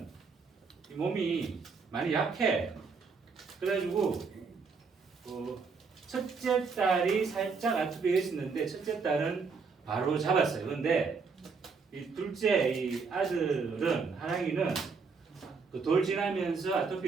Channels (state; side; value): quieter; left; 5.0 dB